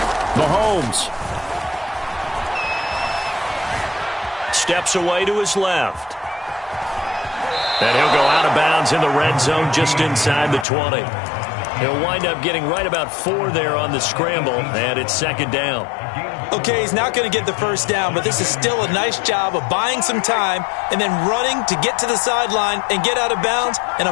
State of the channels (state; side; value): drops out; right; at 10.7 s